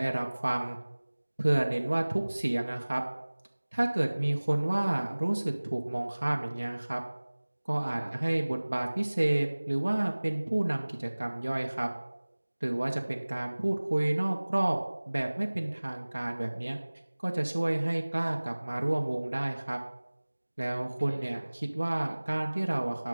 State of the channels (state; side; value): inverted; both; correlation -1.00